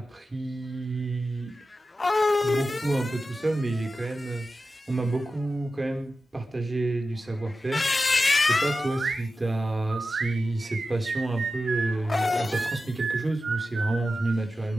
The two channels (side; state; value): both; normal; correlation 0.92